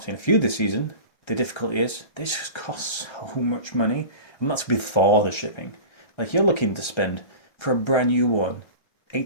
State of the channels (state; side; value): late; right; 1.3 ms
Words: seen a few this season. The difficulty is, they just cost so much money, and that's before the shipping. Like, you're looking to spend, for a brand new one,